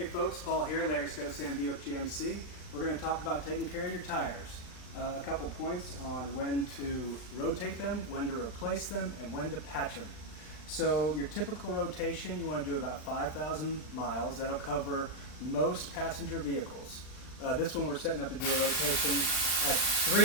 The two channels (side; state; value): right; late; 39 ms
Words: folks, Paul here, Larry Stosan, Buick GMC. We're going to talk about taking care of your tires. A couple points on when to rotate them, when to replace them, and when to patch them. So your typical rotation, you want to do about 5,000 miles. That'll cover most passenger vehicles. This one we're setting up to do a rotation at